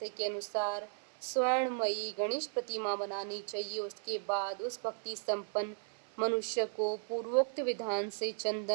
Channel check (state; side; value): silent; left; 54 dB below the other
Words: के अनुसार स्वर्णमयी गणेश प्रतिमा बनानी चाहिए। उसके बाद उस भक्ति संपन्न मनुष्य को पूर्वोक्त विधान से